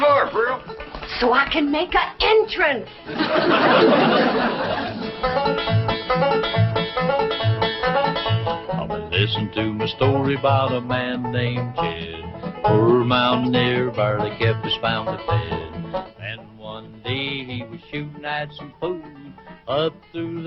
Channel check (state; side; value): identical; both; correlation 1.00